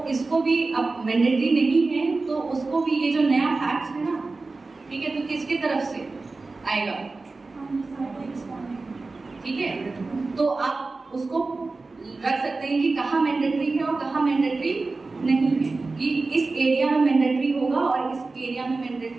इसको भी अब मैंडेटरी नहीं है तो उसको भी ये जो नया फैक्ट है ना, ठीक है, तो किसके तरफ से आएगा, ठीक है। तो आप उसको रख सकते हैं कि कहाँ मैंडेटरी है और कहाँ मैंडेटरी नहीं है, कि इस एरिया में मैंडेटरी होगा और इस एरिया में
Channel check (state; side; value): quieter; left; 3.7 dB